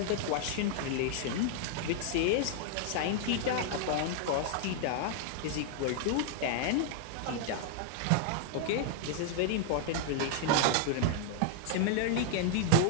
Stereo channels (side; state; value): both; different; correlation -0.01